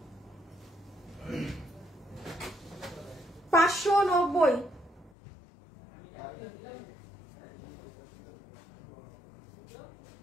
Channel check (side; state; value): right; drops out; at 5.1 s